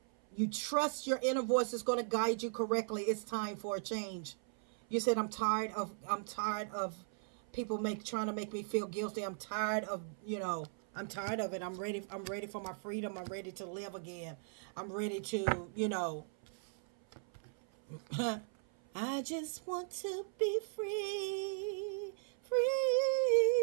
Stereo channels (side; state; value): left; silent; 53 dB below the other